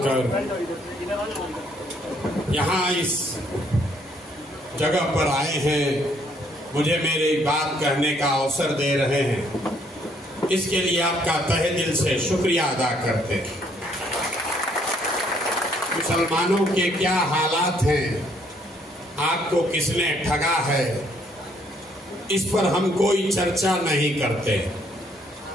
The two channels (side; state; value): both; normal; correlation 0.67